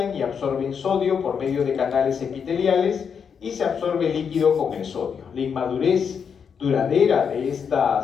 y absorben sodio por medio de canales epiteliales y se absorbe líquido con el sodio. La inmadurez duradera de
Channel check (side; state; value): right; quieter; 6.8 dB